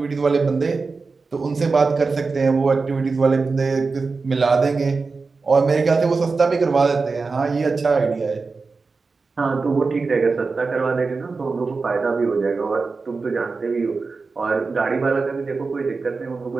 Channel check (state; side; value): quieter; left; 4.3 dB